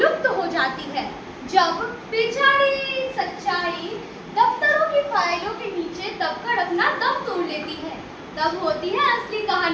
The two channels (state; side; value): identical; both; correlation 1.00